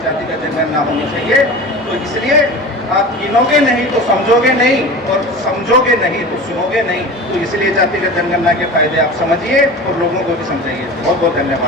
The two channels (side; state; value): both; normal; correlation 0.33